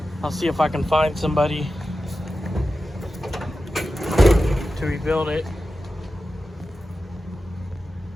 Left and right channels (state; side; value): normal; both; correlation 0.92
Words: I'll see if I can find somebody to rebuild it.